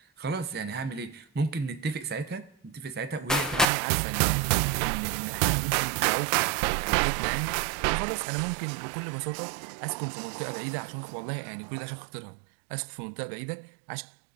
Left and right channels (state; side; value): drops out; left; at 3.7 s